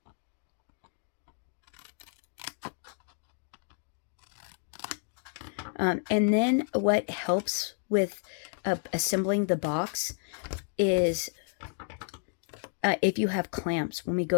And then what helps with assembling the box is if you have clamps. When we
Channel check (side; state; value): right; silent; 57 dB below the other